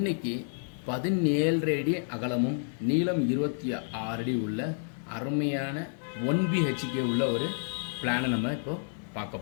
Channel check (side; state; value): right; silent; 58 dB below the other